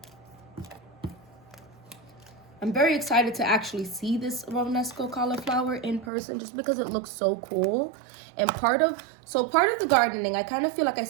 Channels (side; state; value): left; drops out; at 6.1 s